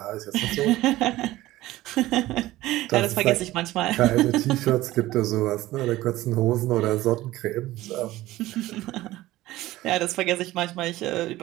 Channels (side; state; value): left; quieter; 16.7 dB